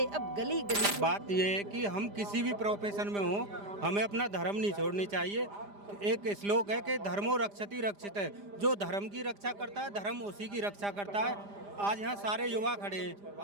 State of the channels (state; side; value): late; left; 5.0 ms